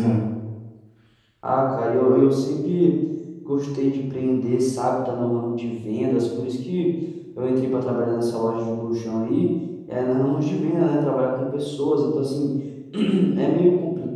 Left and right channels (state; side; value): identical; both; correlation 1.00